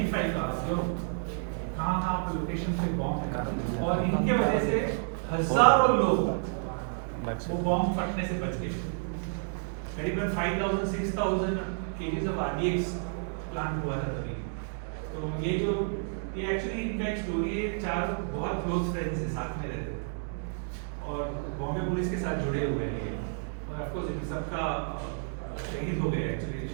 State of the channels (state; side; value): silent; left; digital silence